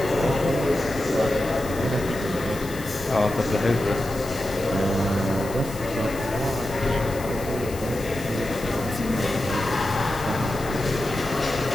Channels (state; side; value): noise; left; hiss, 15 dB below the sound